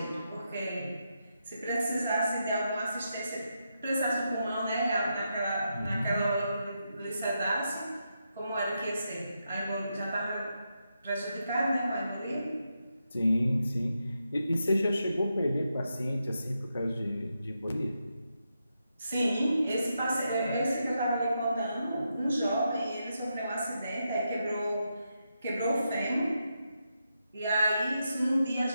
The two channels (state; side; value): inverted; both; correlation -0.85